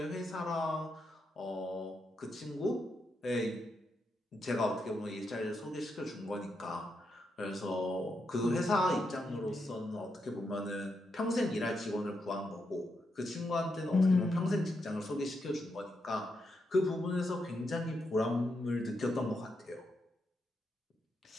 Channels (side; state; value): both; normal; correlation 0.83